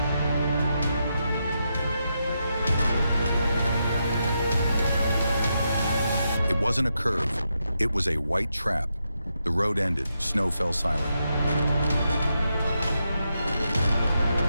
It wasn't a curve, it was a white trap. The road ended, snow fell silent.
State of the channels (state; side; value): inverted; both; correlation -0.84